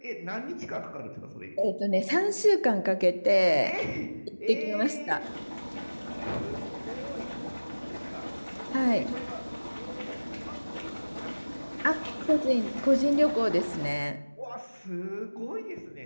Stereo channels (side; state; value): both; inverted; correlation -1.00